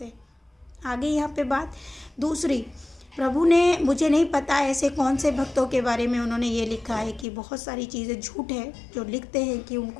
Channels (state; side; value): drops out; right; at 7.2 s